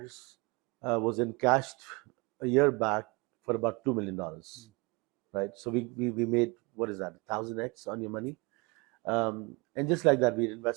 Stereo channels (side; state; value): left; quieter; 27.4 dB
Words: was encashed a year back for about $2 million, right? So we made, what is that, 1,000x on your money? And just like that, we